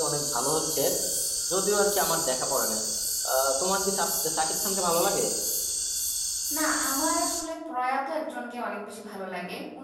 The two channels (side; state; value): both; identical; correlation 1.00